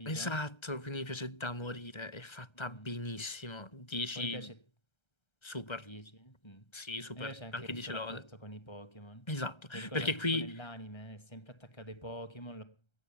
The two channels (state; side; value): late; right; 1.3 ms